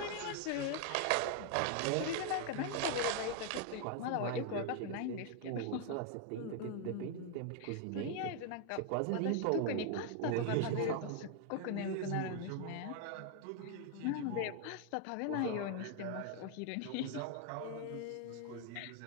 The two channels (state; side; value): different; both; correlation 0.00